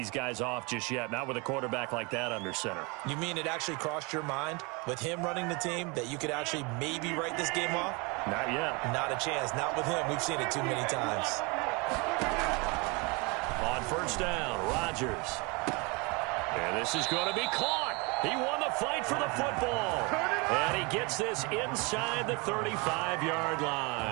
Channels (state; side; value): quieter; left; 28.7 dB